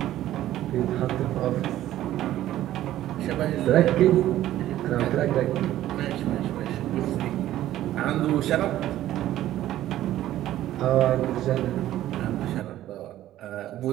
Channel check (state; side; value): quieter; left; 13.5 dB